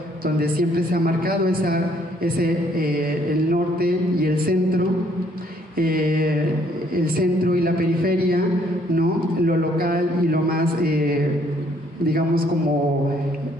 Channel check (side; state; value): both; normal; correlation 0.65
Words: donde siempre se ha marcado el norte y el centro y la periferia, ¿no?, lo local y lo más, digamos, como